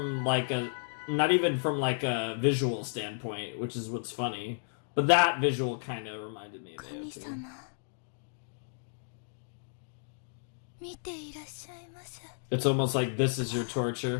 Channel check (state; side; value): silent; right; digital silence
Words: like a, not even from like a visual standpoint, which is what's funny. But that visual kind of reminded me of AOT. It's almost like this is your